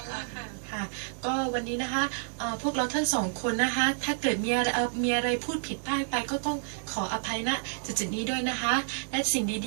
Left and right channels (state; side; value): silent; left; digital silence